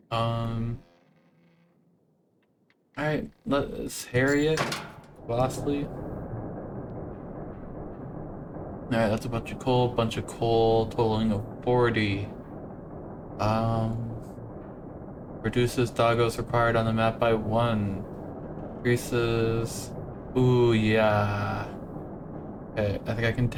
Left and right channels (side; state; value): both; identical; correlation 1.00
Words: Alright, let's harry it. Lastly. Alright, that's a bunch of coal, totaling of 40. Reduces doggos required on the map by 1. Increases. Ooh, yeah. Okay, I think I can